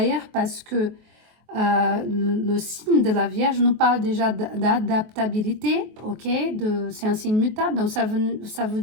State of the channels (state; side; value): late; left; 23 ms